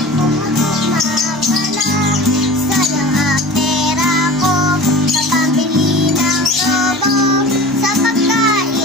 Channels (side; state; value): both; normal; correlation 0.37